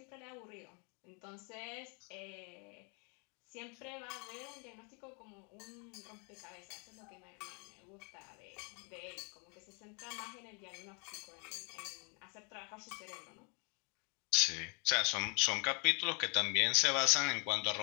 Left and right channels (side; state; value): right; quieter; 35.5 dB